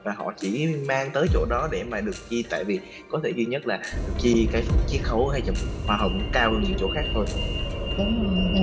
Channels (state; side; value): identical; both; correlation 1.00